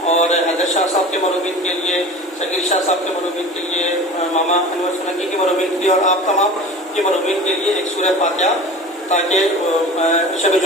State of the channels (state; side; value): normal; both; correlation 0.37